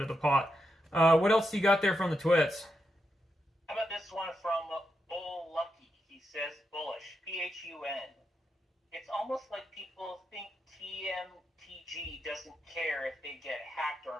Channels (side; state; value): both; normal; correlation 0.85